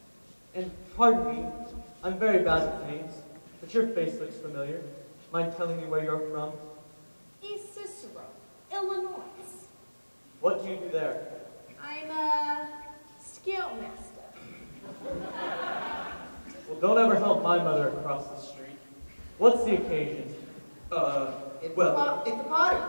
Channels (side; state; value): both; inverted; correlation -1.00